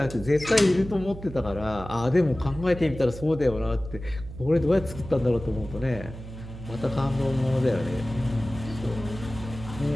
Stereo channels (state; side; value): noise; right; hum, 13 dB below the sound